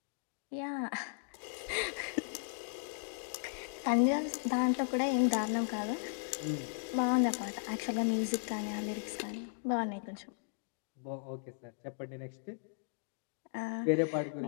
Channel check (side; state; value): right; silent; digital silence